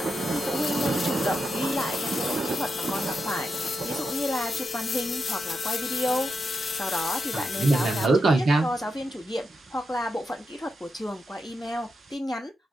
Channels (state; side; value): normal; both; correlation 0.85